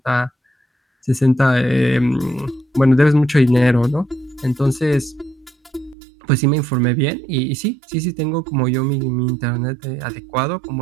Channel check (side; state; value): left; drops out; at 6.0 s